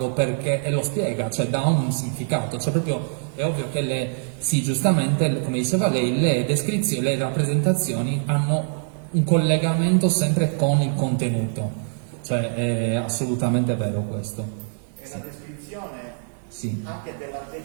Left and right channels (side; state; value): left; silent; digital silence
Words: perché, e lo spiega, cioè dà un significato, cioè proprio è ovvio che sì, giustamente, come diceva lei, le descrizioni, le rappresentazioni hanno un collegamento sempre con il contenuto, cioè è assolutamente vero questo. E la descrizione Sì. anche